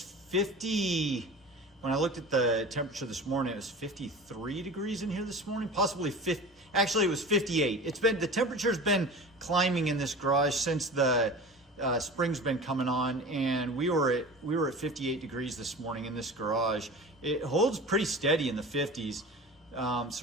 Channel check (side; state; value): both; normal; correlation 0.35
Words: 50. When I looked at the temperature this morning, it was 53 degrees in here this morning, possibly 50. Actually, it was 58. The temperature's been climbing in this garage since the spring's been coming on, and we were at 58 degrees this morning in this garage. It holds pretty steady in the 50s.